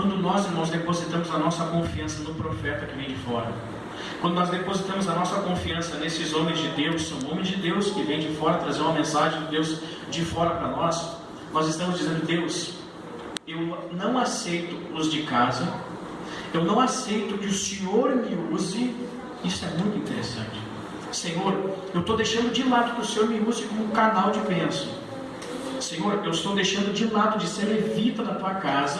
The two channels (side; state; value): both; identical; correlation 1.00